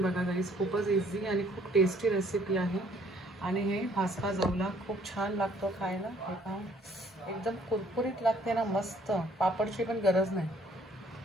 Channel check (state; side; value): normal; both; correlation 0.61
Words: बघा गाईज. खूपच इझी आणि खूप टेस्टी रेसिपी आहे. आणि हे भाजका जवला खूप छान लागतो खायला. हे पहा, एकदम कुरकुरीत लागते ना, मस्त. पापडची पण गरज नाही.